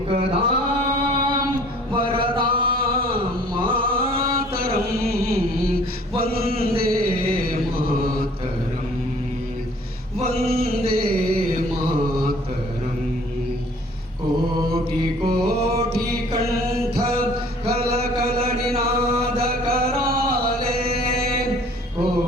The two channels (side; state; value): both; normal; correlation 0.53